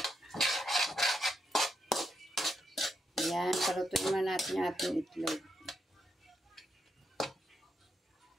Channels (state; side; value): normal; both; correlation 0.82